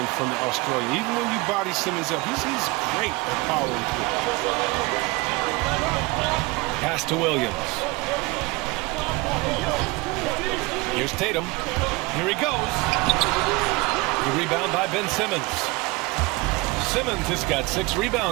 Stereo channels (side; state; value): left; quieter; 24.0 dB